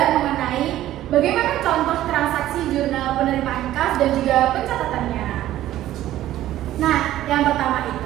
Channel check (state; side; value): quieter; left; 13.7 dB